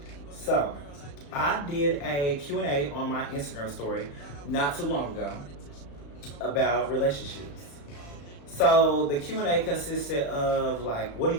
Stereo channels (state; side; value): late; right; 35 ms